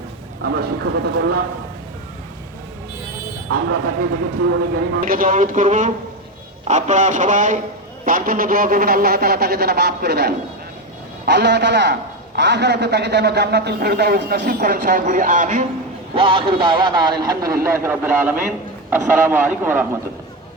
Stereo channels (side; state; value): both; normal; correlation 0.13